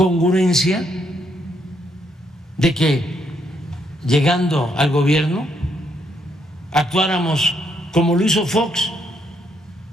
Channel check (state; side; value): normal; both; correlation 0.74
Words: de que llegando al gobierno actuáramos como lo hizo Fox,